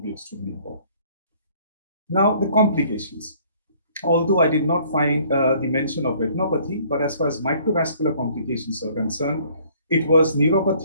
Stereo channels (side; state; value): both; inverted; correlation -0.58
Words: extremely important. Now, the complications. Although I did not find the mention of retinopathy, but as far as microvascular complications are concerned, it was